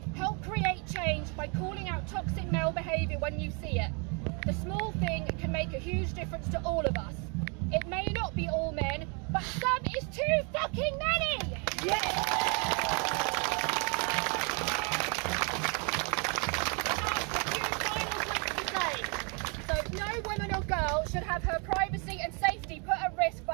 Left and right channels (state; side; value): quieter; left; 34.9 dB